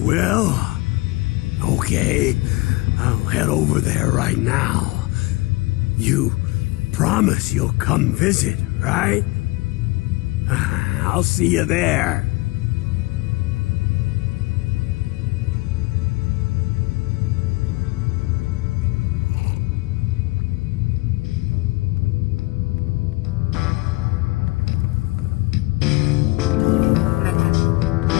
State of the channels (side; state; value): right; quieter; 22.7 dB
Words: will? Okay, I'll head over there right now. You promise you'll come visit, right? I'll see you there.